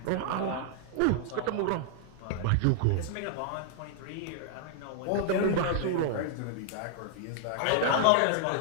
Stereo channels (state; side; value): different; both; correlation 0.00